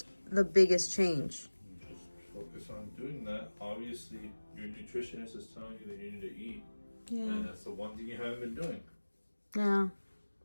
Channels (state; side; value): inverted; both; correlation -1.00